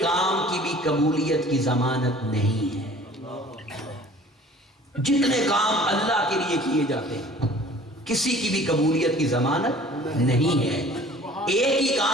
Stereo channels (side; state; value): both; normal; correlation 0.49